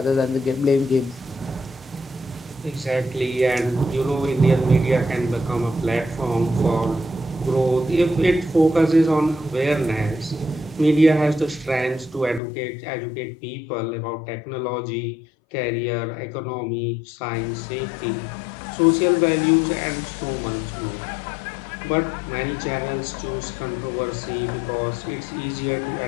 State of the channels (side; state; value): right; drops out; at 12.4 s